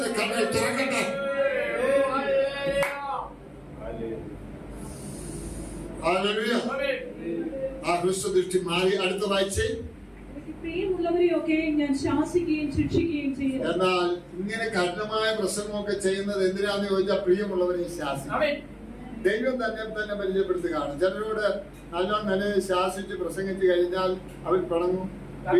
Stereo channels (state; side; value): identical; both; correlation 1.00